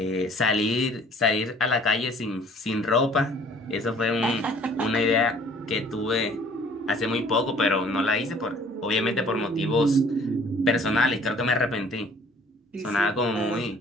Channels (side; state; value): both; normal; correlation 0.54